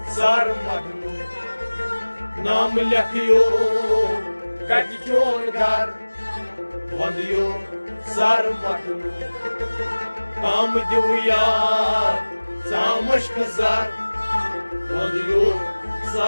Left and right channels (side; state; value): both; inverted; correlation -1.00